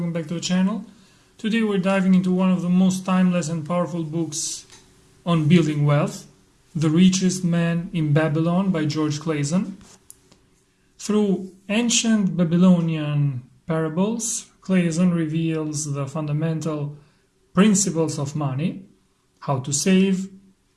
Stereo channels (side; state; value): both; identical; correlation 1.00